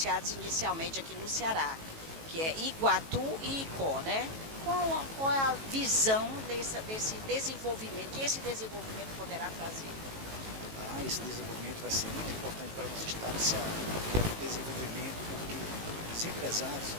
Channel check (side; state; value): left; late; 18 ms